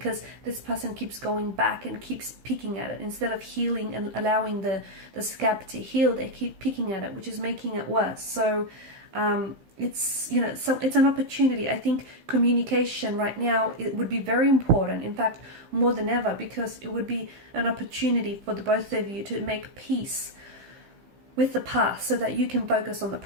this person keeps going back and keeps picking at it. Instead of healing and allowing the scab to heal, they keep picking at it, which is making it worse. So it's, you know, so it's an opportunity. I think communication right now, it would be very important, in fact more than ever, because it would be an opportunity for the both of you to make peace with the past so that you can focus on the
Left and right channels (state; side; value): late; left; 15 ms